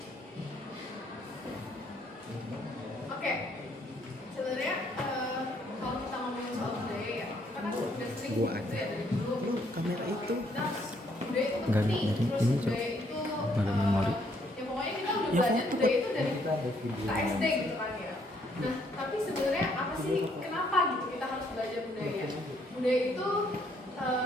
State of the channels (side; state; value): both; normal; correlation 0.69